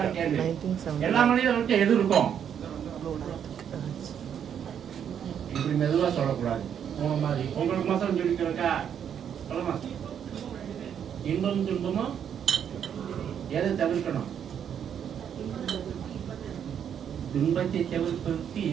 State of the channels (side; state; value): left; quieter; 8.6 dB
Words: கேள்வி. எல்லா மனிதர்களுக்கும் எது இருக்கும்? இப்படி மெதுவா சொல்லக்கூடாது. மாதிரி உங்களுக்கு மாசம் சொல்லிக்கிறக்கா சொல்லுமா? இன்பம் துன்பமும் எதை தவிர்க்கணும்? துன்பத்தை தவிர்ப்பதற்கு